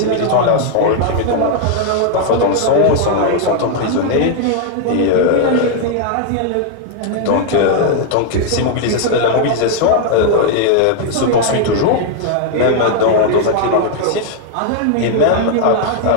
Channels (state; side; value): different; both; correlation 0.00